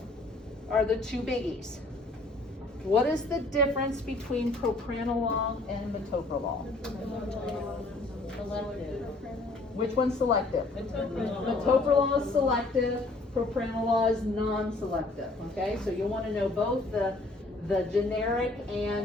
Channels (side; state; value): right; quieter; 3.0 dB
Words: are the two biggies. What is the difference between propranolol and metoprolol? Selective. Which one's selective? Metoprolol is selective, propranolol is non-selective, okay? So you'll want to know both the generic